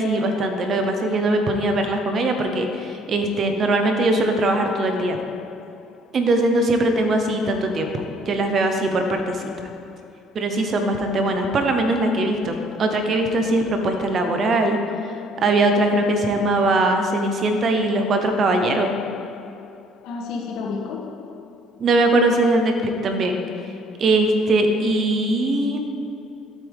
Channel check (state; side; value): normal; both; correlation 0.61